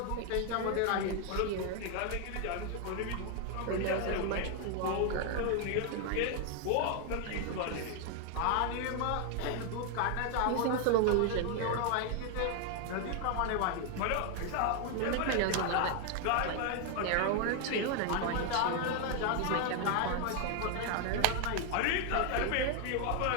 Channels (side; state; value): both; different; correlation 0.01